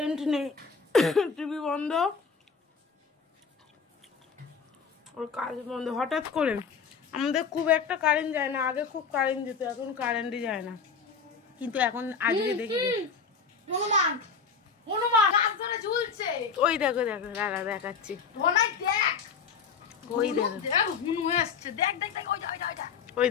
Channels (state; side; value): quieter; right; 5.7 dB